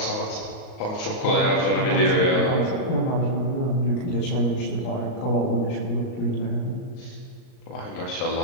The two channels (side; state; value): right; late; 38 ms